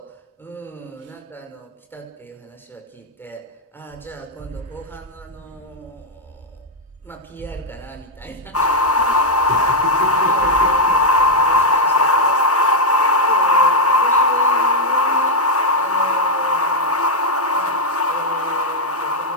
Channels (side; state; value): both; normal; correlation -0.01